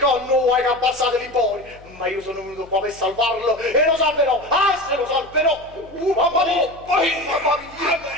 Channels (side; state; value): left; noise; hum, 23 dB below the sound